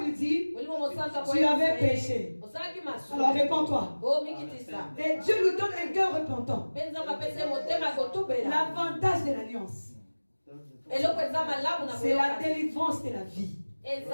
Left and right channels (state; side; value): inverted; both; correlation -1.00